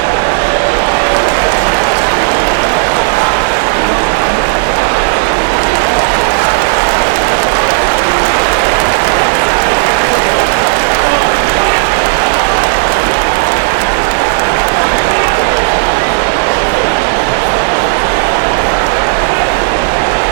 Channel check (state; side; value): silent; left; 74 dB below the other